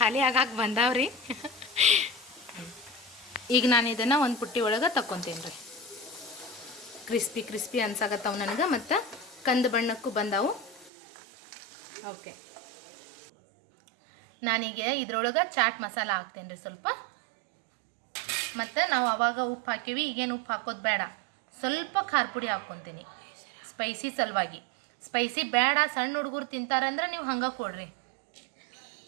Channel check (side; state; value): left; drops out; at 10.9 s